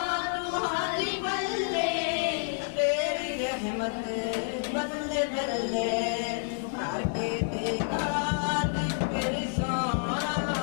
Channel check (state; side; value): silent; right; digital silence